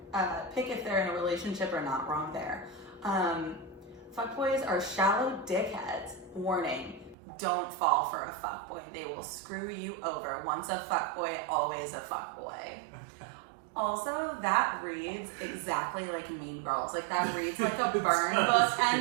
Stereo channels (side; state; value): left; drops out; at 7.2 s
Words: they're in a relationship or not. Wrong there. Fuckboys are shallow dickheads. Warning, don't fall for a fuckboy. They will screw you over. Once a fuckboy, always a fuckboy. Also, that reads exactly like Mean Girls. Like, that reads like a burn book